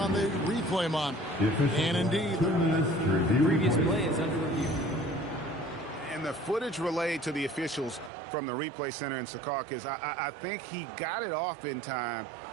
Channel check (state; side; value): drops out; left; at 8.1 s